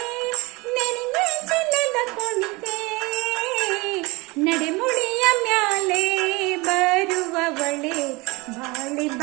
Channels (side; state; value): left; quieter; 24.7 dB